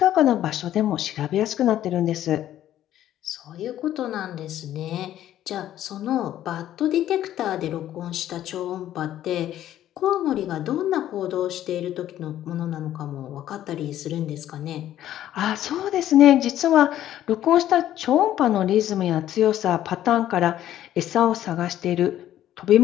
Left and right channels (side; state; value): right; quieter; 12.2 dB